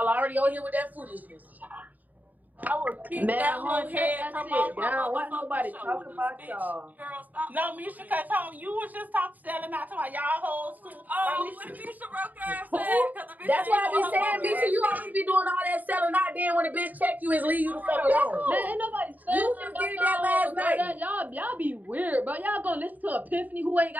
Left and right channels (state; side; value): late; left; 0.081 ms